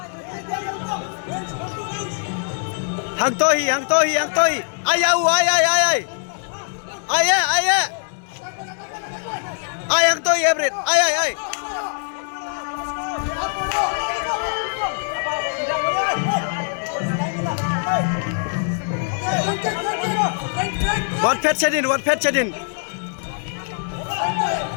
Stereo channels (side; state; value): right; silent; digital silence